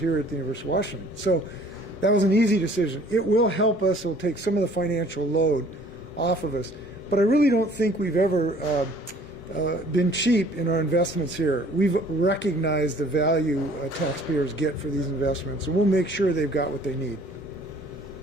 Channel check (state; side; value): normal; both; correlation 0.54